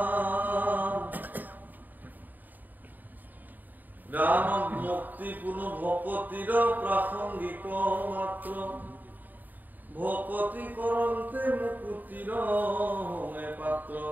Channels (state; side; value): late; left; 0.086 ms